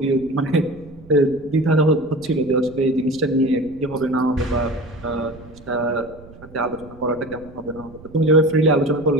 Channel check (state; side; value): noise; right; rumble, 21 dB below the sound